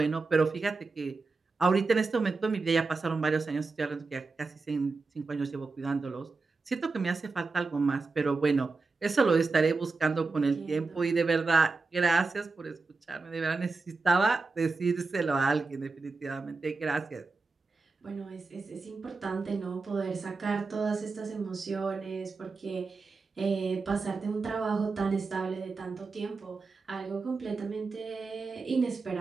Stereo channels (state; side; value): quieter; left; 4.1 dB